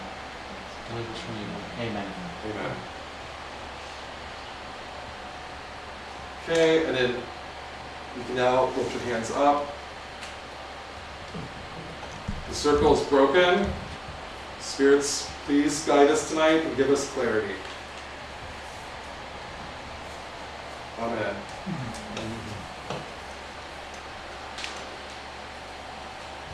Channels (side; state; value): both; identical; correlation 1.00